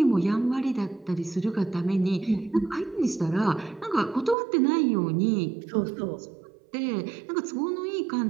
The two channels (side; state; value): left; drops out; at 4.4 s